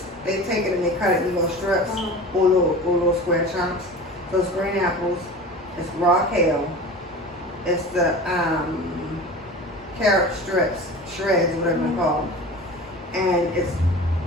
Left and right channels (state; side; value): normal; both; correlation 0.35